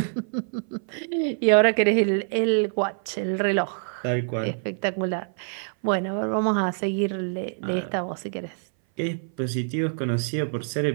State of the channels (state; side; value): silent; left; 59 dB below the other